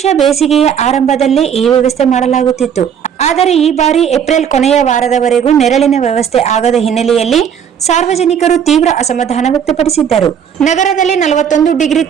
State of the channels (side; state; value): left; quieter; 8.2 dB